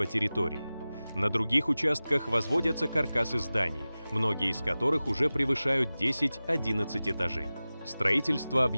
территории. На других участках возводятся каркасы зданий, многие из которых уже превышают 10-11 этажей. Строительство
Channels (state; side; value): inverted; both; correlation -0.97